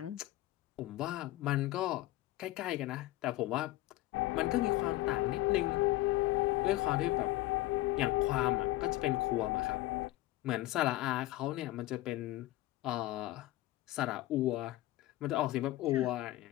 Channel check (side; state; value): right; quieter; 16.9 dB